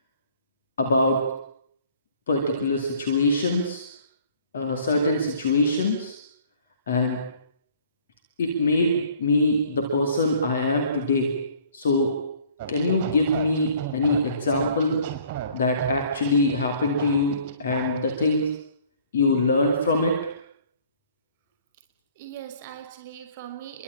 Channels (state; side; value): inverted; both; correlation -0.56